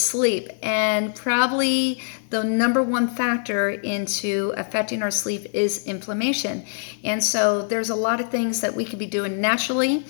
and probably the number one factor into affecting our sleep is inflammation. And so there's a lot of things that we can be doing naturally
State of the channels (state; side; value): silent; right; digital silence